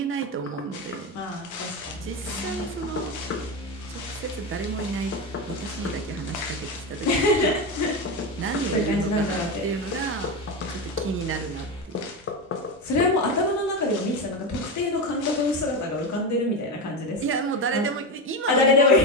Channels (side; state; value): both; normal; correlation 0.16